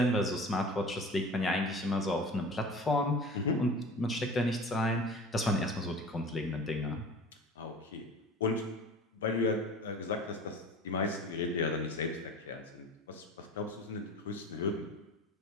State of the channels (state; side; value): normal; both; correlation 0.39